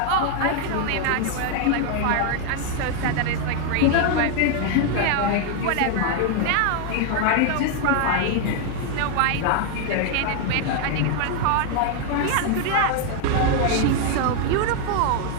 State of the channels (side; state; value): both; different; correlation 0.00